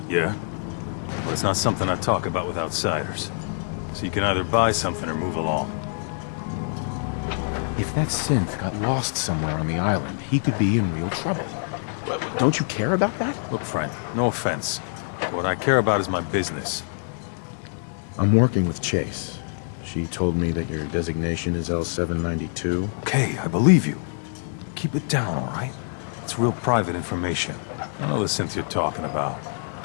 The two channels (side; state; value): right; silent; digital silence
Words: Yeah, but it's not something I talk about with outsiders. So you can either buy something or move along. If that synth got lost somewhere on the island, he could be in real trouble. Don't you care about that? Look, friend, no offense. What I care about is my business. I'm working with Chase. She told me that your designation is L792. Okay, I believe you. Keep it down, all right? It's real private information. I know the synth you're talking about.